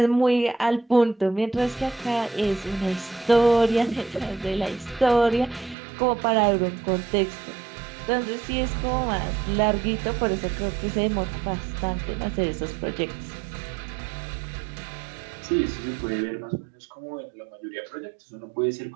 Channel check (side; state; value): left; drops out; at 5.8 s